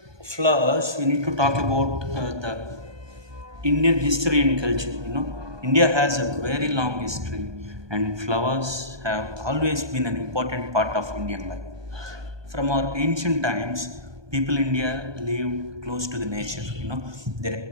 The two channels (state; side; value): late; left; 1.2 ms